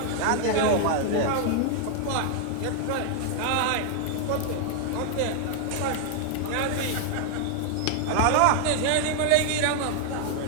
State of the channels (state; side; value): different; both; correlation 0.00